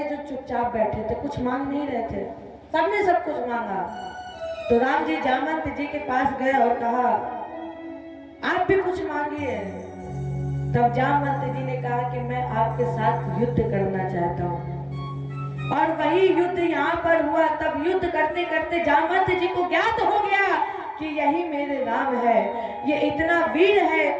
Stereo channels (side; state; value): both; identical; correlation 1.00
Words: जो चुपचाप बैठे थे, कुछ मांग नहीं रहे थे। सबने सब कुछ मांगा। तो राम जी जामवंत जी के पास गए और कहा आप भी कुछ मांगिए। तब जामवंत जी ने कहा कि मैं आपके साथ युद्ध करना चाहता हूँ। और वही युद्ध यहाँ पर हुआ। तब युद्ध करते करते जामवंत जी को ज्ञात हो गया कि यही मेरे राम है। ये इतना वीर है